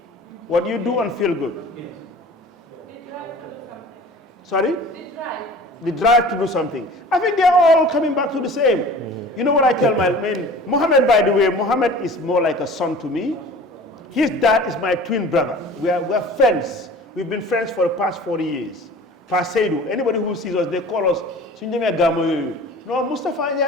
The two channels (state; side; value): normal; both; correlation 0.43